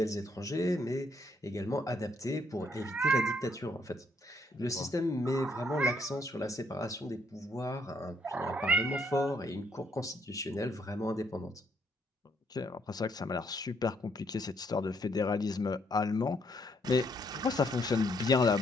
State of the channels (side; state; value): both; normal; correlation 0.71